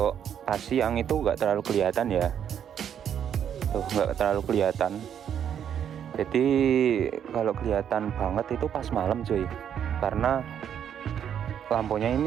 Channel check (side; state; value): left; quieter; 9.0 dB